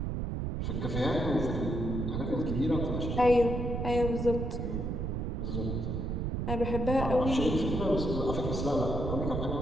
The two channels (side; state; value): right; noise; rumble, 2 dB below the sound